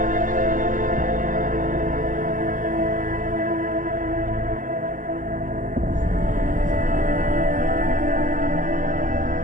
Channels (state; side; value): late; left; 0.38 ms